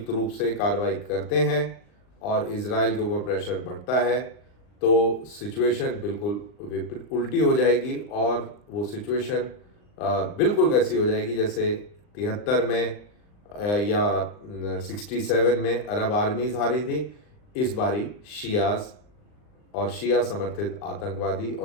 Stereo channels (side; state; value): right; late; 39 ms